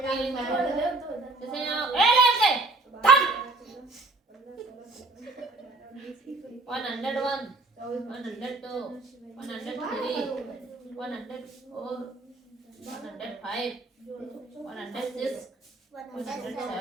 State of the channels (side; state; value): left; quieter; 3.3 dB